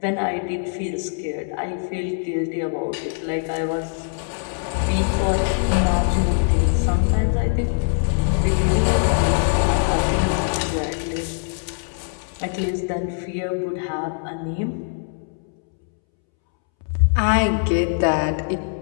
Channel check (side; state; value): right; silent; 64 dB below the other